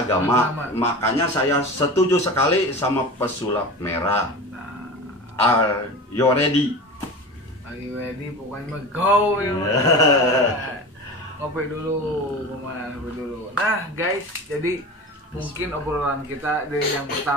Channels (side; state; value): both; normal; correlation 0.31